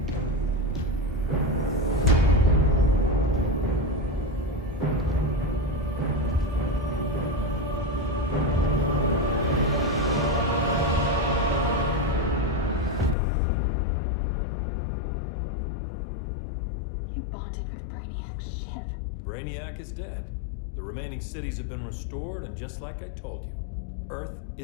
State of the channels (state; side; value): drops out; right; at 13.2 s